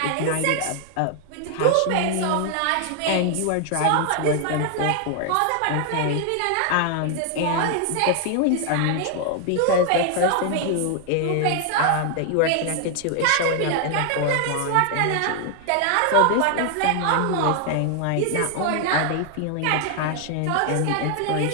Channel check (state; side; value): different; both; correlation 0.00